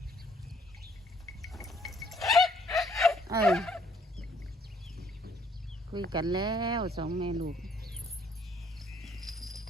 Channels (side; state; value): both; normal; correlation 0.64